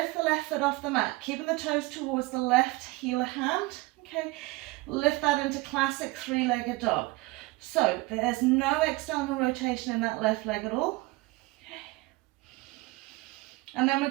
the left foot off the mat, keeping the toes towards the left heel hand. Okay, lift that into classic three-legged dog. So there's no external rotation in that left leg at all. And then we're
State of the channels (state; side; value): quieter; left; 22.2 dB